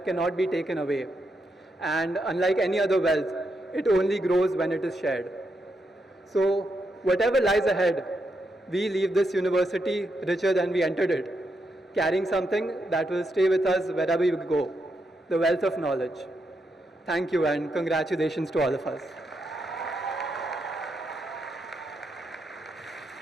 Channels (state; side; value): normal; both; correlation 0.82